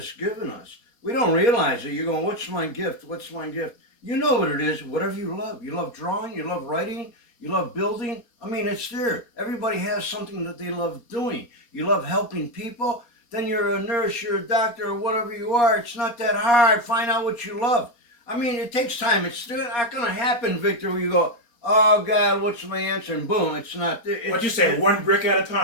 given us. We don't realize it. You're going, what's my gift? What's my gift? You know what it is. Whatever you love. You love drawing. You love writing. You love building. I mean, it's there. Everybody has something that they love doing. You love helping people. Then you're a nurse, you're a doctor, or whatever you are. It's not that hard. Find out what you love. I mean, it takes time. It's still not going to happen, Victor, where you go, oh, God, what's my answer? And boom, it's not there. what you say, one brick at a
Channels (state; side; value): late; right; 4.3 ms